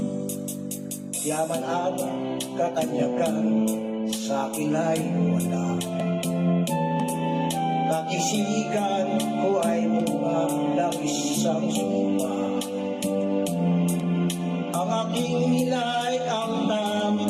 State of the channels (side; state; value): both; identical; correlation 1.00